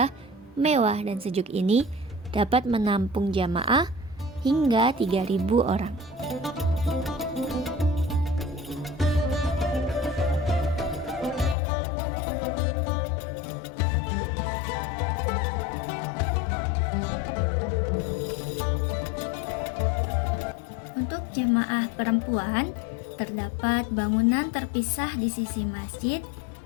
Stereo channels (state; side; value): drops out; right; at 11.6 s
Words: mewah, dan sejuk ini dapat menampung jamaah hingga 3.000 orang. Jamaah perempuan, terdapat bangunan terpisah di sisi masjid